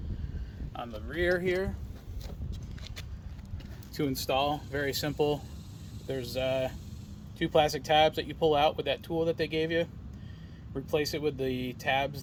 on the rear here. To install, very simple. There's two plastic tabs that you pull out with that tool that they gave you. Replace it with the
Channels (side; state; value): both; identical; correlation 1.00